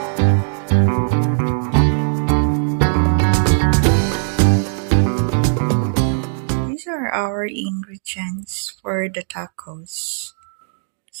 These are our ingredients for the tacos.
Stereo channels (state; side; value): silent; left; digital silence